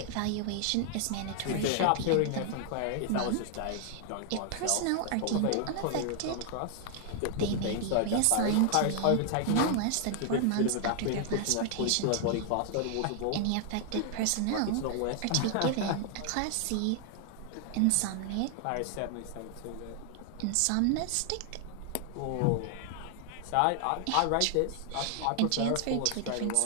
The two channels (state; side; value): different; both; correlation 0.00